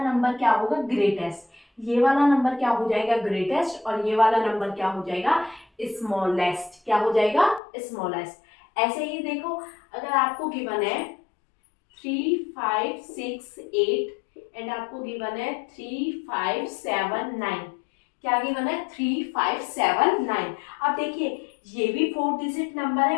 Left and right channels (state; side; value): drops out; right; at 7.6 s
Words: नंबर क्या होगा, ग्रेटेस्ट। ये वाला नंबर क्या हो जाएगा, ग्रेटेस्ट, और ये वाला नंबर क्या हो जाएगा, स्मॉलेस्ट। क्या हो जाएगा, स्मॉलेस्ट। ऐसे ही देखो, अगर आपको गिवन है 3, 5, 6, 8 एंड आपको गिवन है 3, 5, 7, 9, क्या गिवन है, 3, 5, 7, 9। अब देखिए ये भी 4 डिजिट नंबर है